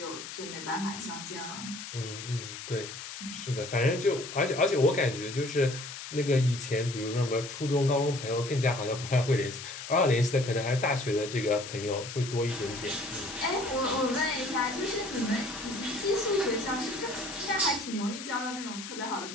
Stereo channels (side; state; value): left; noise; hiss, 10 dB below the sound